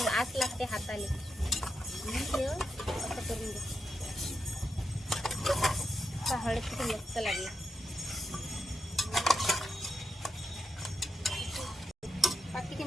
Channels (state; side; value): normal; both; correlation 0.85